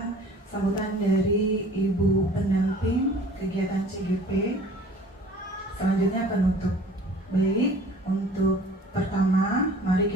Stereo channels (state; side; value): normal; both; correlation 0.49